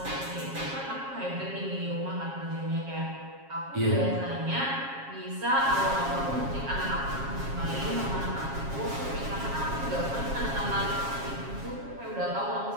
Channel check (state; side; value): late; left; 7.4 ms